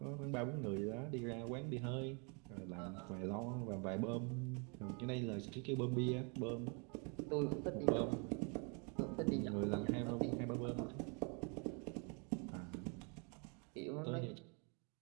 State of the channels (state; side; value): quieter; left; 35.5 dB